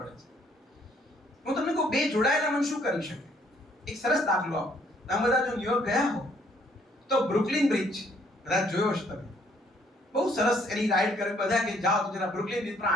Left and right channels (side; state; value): both; normal; correlation 0.65